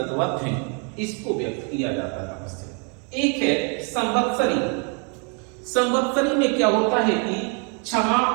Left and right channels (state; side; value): quieter; left; 37.6 dB